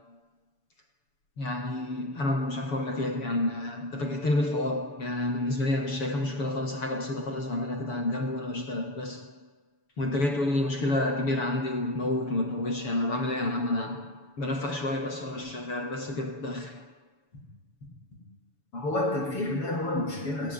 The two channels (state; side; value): late; right; 7.0 ms